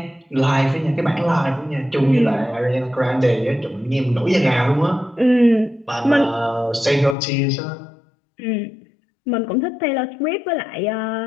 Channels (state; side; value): drops out; right; at 7.2 s